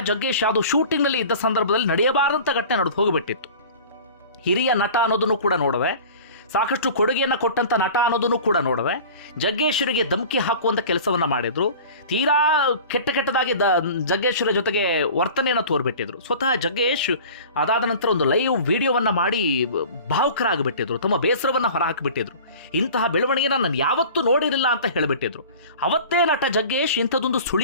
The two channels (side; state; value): both; inverted; correlation -0.41